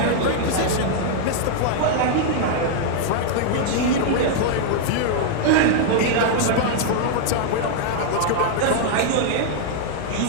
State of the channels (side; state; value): both; different; correlation -0.01